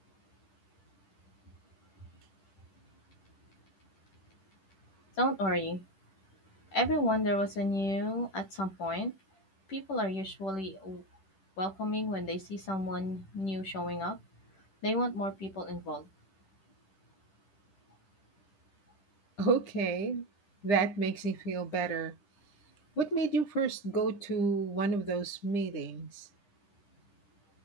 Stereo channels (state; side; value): late; right; 10 ms